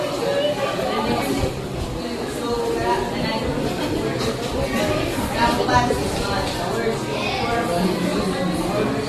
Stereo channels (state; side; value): identical; both; correlation 1.00